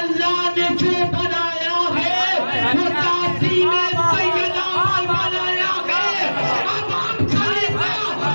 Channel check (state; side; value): inverted; both; correlation -1.00